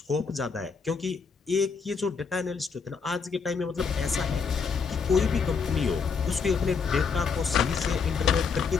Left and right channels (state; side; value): quieter; right; 5.5 dB